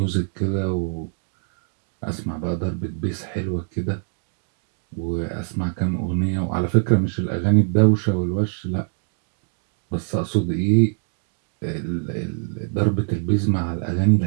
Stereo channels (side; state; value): left; silent; 63 dB below the other